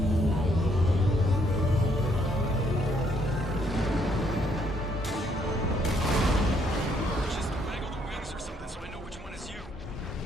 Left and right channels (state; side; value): normal; both; correlation 0.70